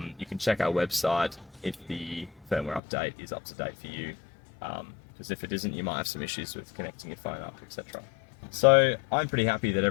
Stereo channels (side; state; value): right; drops out; at 2.8 s